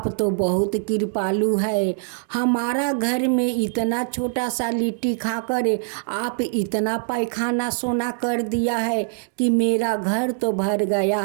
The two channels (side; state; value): left; silent; digital silence